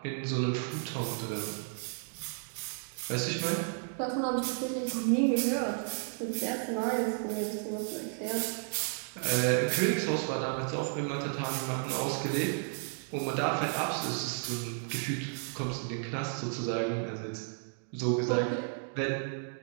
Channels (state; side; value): silent; left; 56 dB below the other